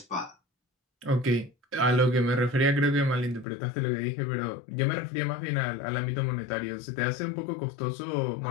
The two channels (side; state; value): right; drops out; at 3.5 s